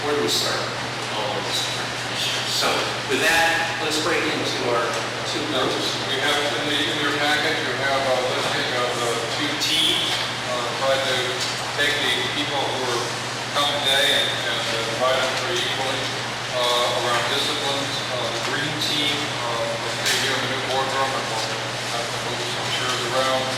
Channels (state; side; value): identical; both; correlation 1.00